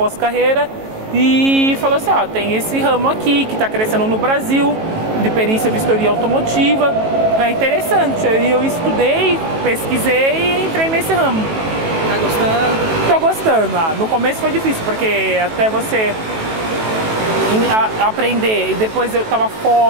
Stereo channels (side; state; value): left; late; 18 ms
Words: E falou assim, tem esse ramo aqui que tá crescendo no Brasil, de perícia e vistoria automotiva. É interessante. Aí eu estudei, pesquisei e entrei nesse ramo. Tá gostando? Tô gostando. No começo foi difícil, porque até você aprender, e depois eu tava